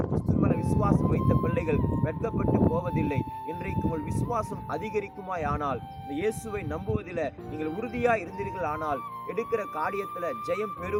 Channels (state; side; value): identical; both; correlation 1.00